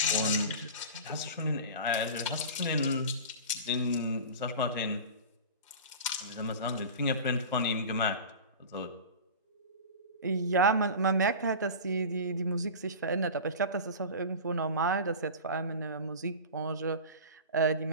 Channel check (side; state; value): both; inverted; correlation -0.33